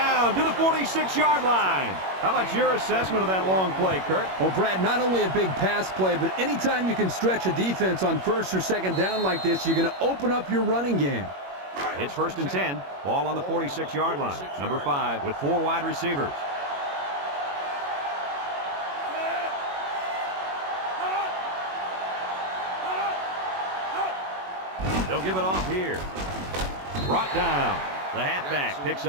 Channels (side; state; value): left; late; 21 ms